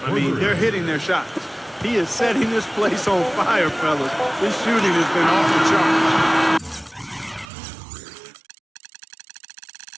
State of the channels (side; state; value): left; drops out; at 7.5 s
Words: I mean, they're hitting their shots. He is setting this place on fire, fellas. His shooting has been off the charts.